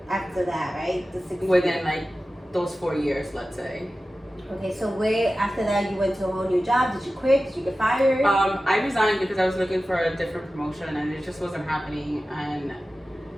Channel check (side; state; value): both; normal; correlation 0.95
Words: after that, right? The 6 within years. like those 4 years, let's say. Okay, so where after that you went to a whole new job? Did you quit? Did you get fired? I resigned because I was looking for a different promotion and it just wasn't happening. And